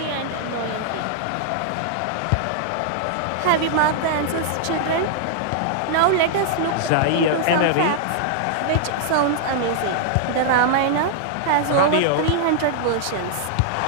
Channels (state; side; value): different; both; correlation -0.01